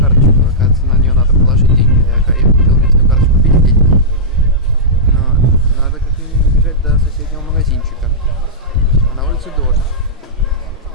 оказывается, на нее надо положить деньги. Я купил местную карточку, купили деньги. Но надо как минимум бежать до соседнего магазинчика. А на улице дождь.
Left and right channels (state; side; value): normal; both; correlation -0.13